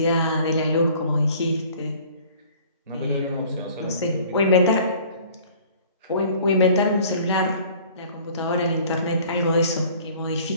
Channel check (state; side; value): inverted; both; correlation -0.51